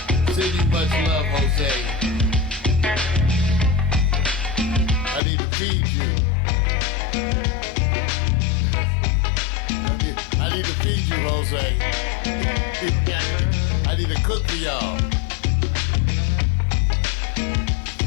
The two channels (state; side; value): drops out; right; at 5.2 s